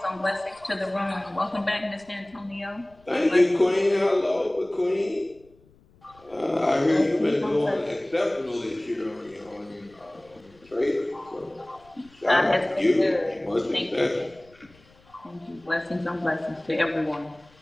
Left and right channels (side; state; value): left; noise; rumble, 29 dB below the sound